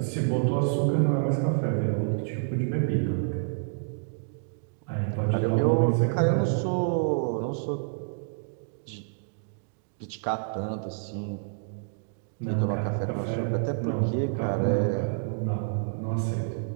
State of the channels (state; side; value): silent; left; digital silence